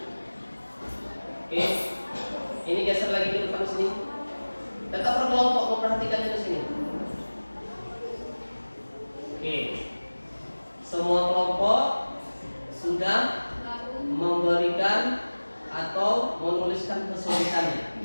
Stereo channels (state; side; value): inverted; both; correlation -1.00